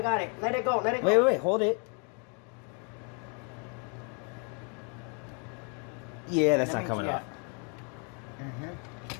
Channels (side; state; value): right; quieter; 37.4 dB